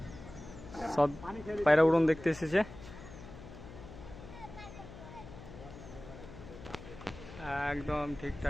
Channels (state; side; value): noise; left; hum, 15 dB below the sound